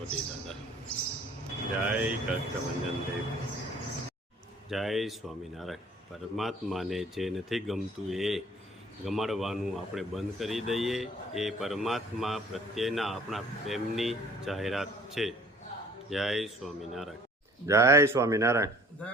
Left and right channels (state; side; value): normal; both; correlation 0.53